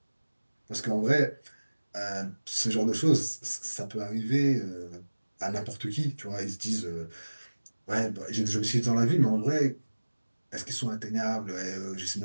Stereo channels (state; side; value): inverted; both; correlation -1.00